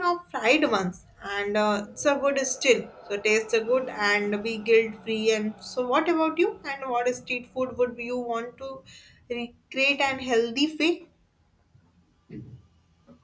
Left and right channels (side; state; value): both; identical; correlation 1.00